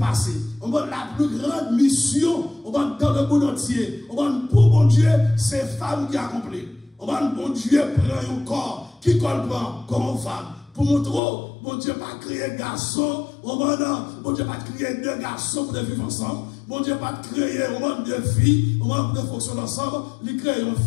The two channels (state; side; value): drops out; right; at 11.2 s